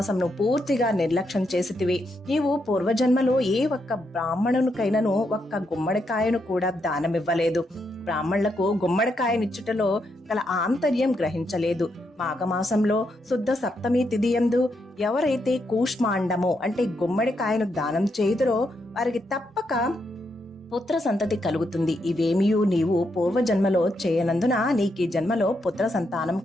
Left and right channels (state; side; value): normal; both; correlation 0.80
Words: పూర్తిగా నిర్లక్ష్యం చేసితివి. నీవు పూర్వజన్మలో ఏ ఒక్క బ్రాహ్మణునికైనను ఒక్క గుమ్మడికాయను కూడా దానమివ్వలేదు. బ్రాహ్మణులకు గుమ్మడికాయనిచ్చుటలో గల ఆంతర్యం గ్రహించలేదు. మాఘమాసంలో శుద్ధ సప్తమి తిథియందు ఎవరైతే కూష్మాండము అంటే గుమ్మడికాయను దానం చేయుదురో వారికి తప్పక పుత్ర సంతతి కలుగుతుంది. ఇవేమియూ నీవు పూర్వజన్మలో చేయనందున నీకు ఈ జన్మలో పుత్ర సంతానం